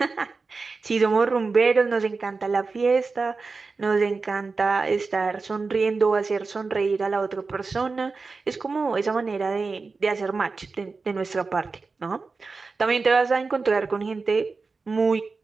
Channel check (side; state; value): left; quieter; 4.2 dB